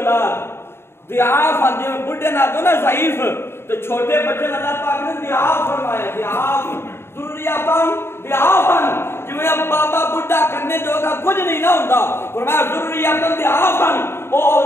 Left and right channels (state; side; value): late; right; 0.12 ms